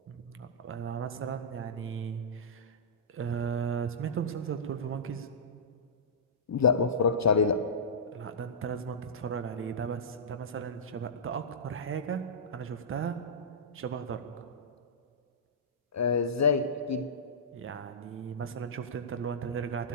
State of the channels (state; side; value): normal; both; correlation -0.19